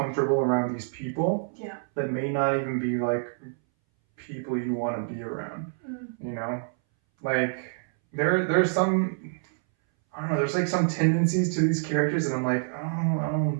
around these people. Yeah. That may not even be like people you want to be around. You know, like there's some, I don't know, there's like some tendencies to these characters, and I'm like, oh,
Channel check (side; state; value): left; silent; 60 dB below the other